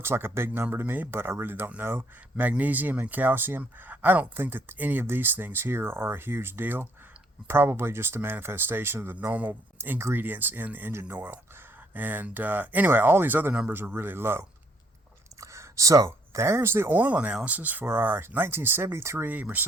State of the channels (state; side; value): normal; both; correlation 0.67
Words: like a big number to me, but I really don't know. Magnesium and calcium. I don't think that any of these things here are a huge deal. Probably just a manifestation of the normal ingredients in engine oil. And anyway, all these other numbers are really low. So there's the oil analysis for our 1973